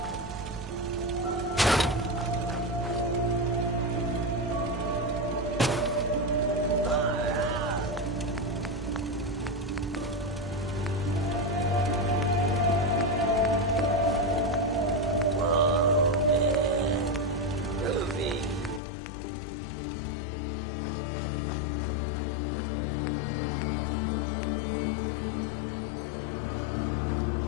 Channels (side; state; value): right; drops out; at 18.8 s